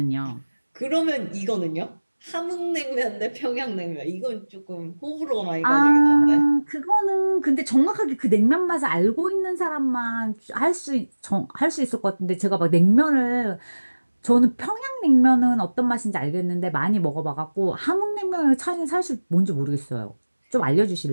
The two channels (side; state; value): both; inverted; correlation -1.00